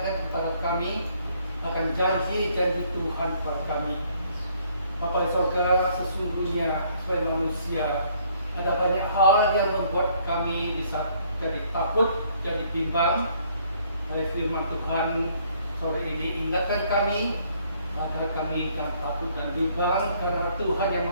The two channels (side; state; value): both; inverted; correlation -0.65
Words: kepada kami akan janji-janji Tuhan kepada kami. Bapa di surga, sesungguhnya sebagai manusia ada banyak hal yang membuat kami bisa jadi takut, jadi bimbang. Oleh firman Tuhan sore ini ingatkan kami agar kami jangan takut dan bimbang, karena Tuhan yang